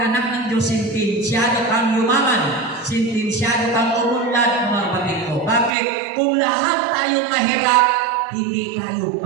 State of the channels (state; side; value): drops out; left; at 5.7 s